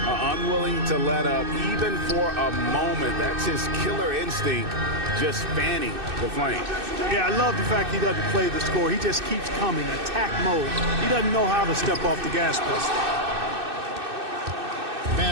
Unwilling to let up even for a moment. That's his killer instinct, just fanning the flame. Yeah, I love the fact he doesn't play the score. He just keeps coming, attack mode. He doesn't know how to step off the gas pedal.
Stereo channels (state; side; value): late; left; 2.6 ms